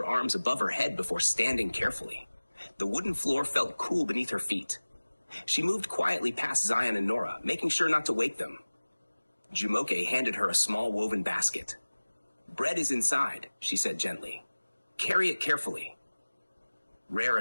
arms above her head before standing carefully. The wooden floor felt cool beneath her feet. She moved quietly past Zion and Nora, making sure not to wake them. Jumoke handed her a small woven basket. "Bread is inside," she said gently. "Carry it carefully." Rere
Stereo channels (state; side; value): inverted; both; correlation -1.00